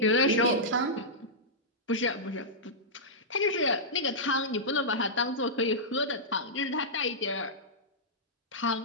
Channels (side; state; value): both; normal; correlation -0.11